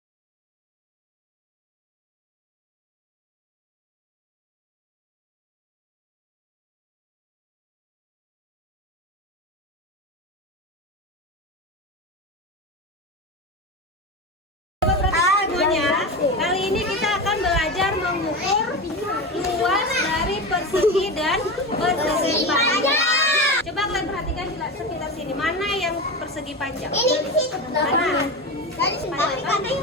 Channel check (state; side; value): normal; both; correlation 0.22